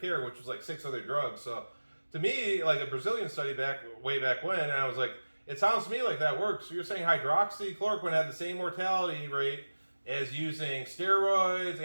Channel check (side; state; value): both; inverted; correlation -1.00